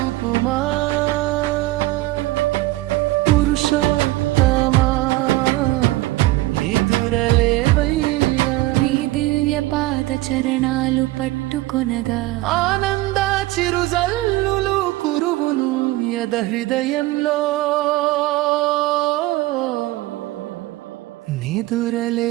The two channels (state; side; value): quieter; left; 18.4 dB